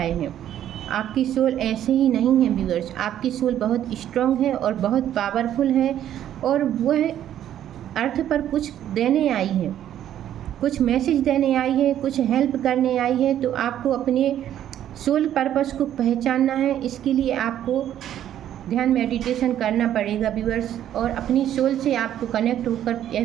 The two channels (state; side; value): quieter; left; 11.1 dB